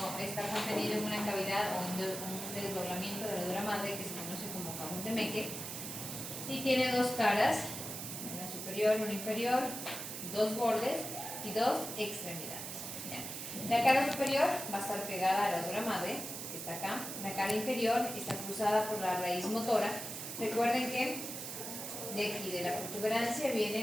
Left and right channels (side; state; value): right; noise; hiss, 7 dB below the sound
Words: contenido en una cavidad o en un desdoblamiento de la dura madre que se conoce como cajón de Meckel, y tiene dos caras, una superior, una inferior, dos bordes y dos extremidades. La cara superior va a estar pegada a la dura madre, que está acá. La cara inferior está cruzada por la raíz motora. Recuerden que de aquí, de la protuberancia,